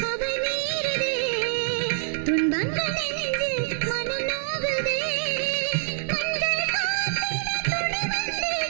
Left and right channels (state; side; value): silent; left; digital silence